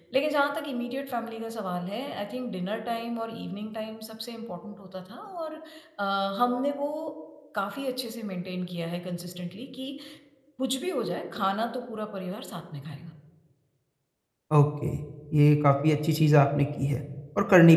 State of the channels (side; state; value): both; identical; correlation 1.00